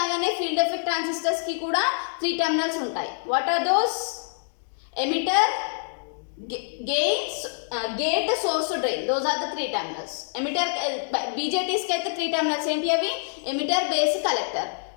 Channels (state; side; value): silent; right; digital silence